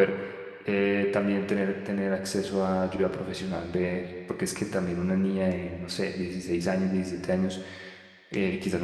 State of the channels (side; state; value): both; identical; correlation 1.00